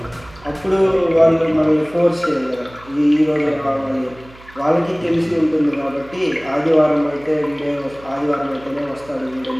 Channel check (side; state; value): right; noise; hum, 23 dB below the sound